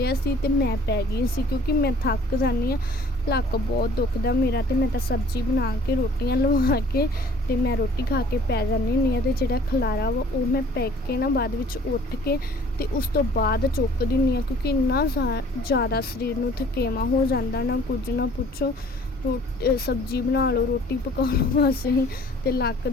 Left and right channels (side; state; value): both; normal; correlation 0.53